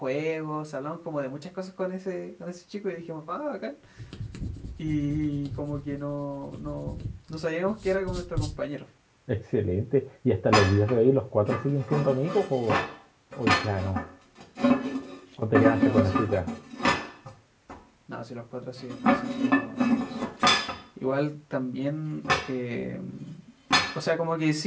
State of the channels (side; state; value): both; identical; correlation 1.00